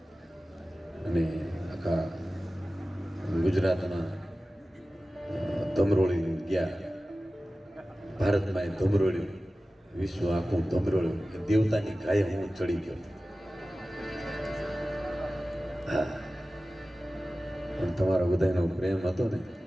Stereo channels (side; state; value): both; normal; correlation 0.96